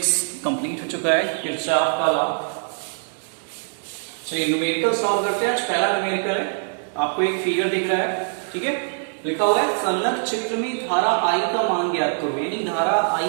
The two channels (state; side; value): silent; left; digital silence